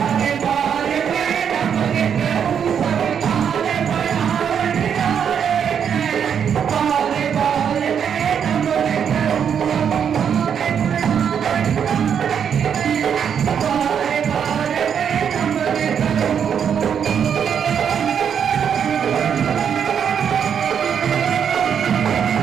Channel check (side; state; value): left; quieter; 7.8 dB